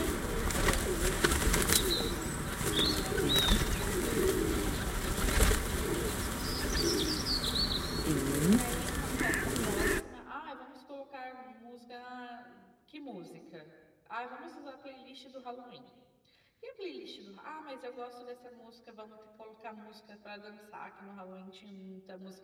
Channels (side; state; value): both; identical; correlation 1.00